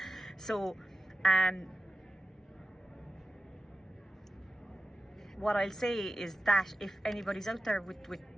So what I'll say is that if anybody's out there with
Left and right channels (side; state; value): both; normal; correlation 0.92